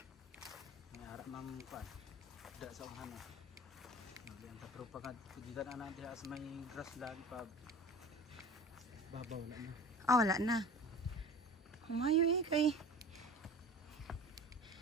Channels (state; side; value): normal; both; correlation 0.39